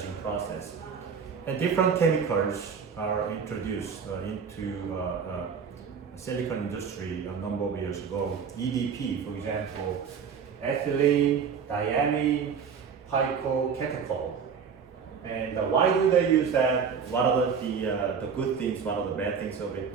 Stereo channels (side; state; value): left; quieter; 6.5 dB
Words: process. And different chemicals are introduced into silicon industry a number of years ago. EDP, for example, ethylene, diamine, picocatechol. And why do they use that? What are the good things? What are the bad things of it?